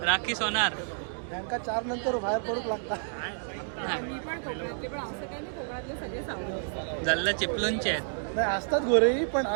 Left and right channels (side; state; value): left; silent; digital silence